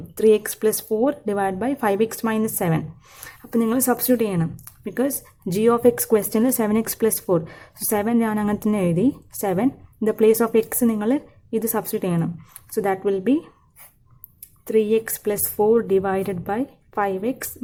3x plus 4 divided by 5x minus 7. അപ്പോൾ നിങ്ങൾ സബ്സ്റ്റിറ്റ്യൂട്ട് ചെയ്യണം. ബിക്കോസ് ജി ഓഫ് എക്സ് ക്വസ്റ്റ്യനിൽ 7x plus 4. സോ 7 ഞാൻ അങ്ങനെ തന്നെ എഴുതി. 7 in the place of X നിങ്ങൾ ഇത് സബ്സ്റ്റിറ്റ്യൂട്ട് ചെയ്യണം. So that will B 3x plus 4 divided by 5x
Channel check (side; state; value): both; identical; correlation 1.00